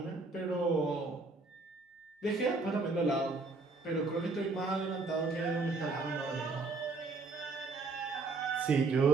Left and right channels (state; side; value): quieter; left; 3.7 dB